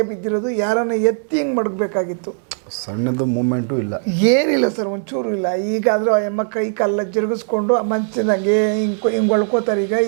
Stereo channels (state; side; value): silent; left; digital silence